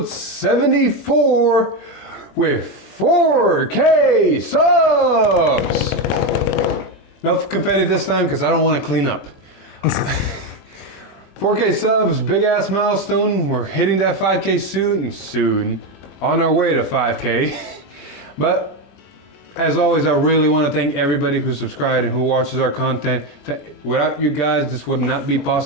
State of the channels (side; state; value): right; late; 20 ms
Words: 74, with 4K subs! No confetti this time, because I don't want to clean up. 4K subs, big ass milestone. We're hitting that 5K soon, on our way to 5K. But as always, I really want to thank everybody who subscribed and who watches our content. Without you guys, this would not be